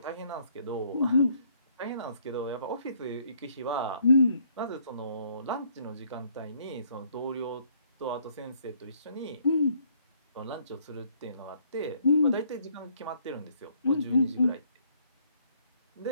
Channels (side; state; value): both; inverted; correlation -0.66